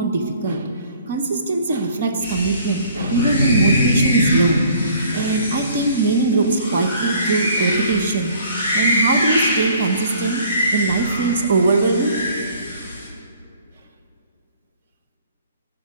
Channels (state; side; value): inverted; both; correlation -0.55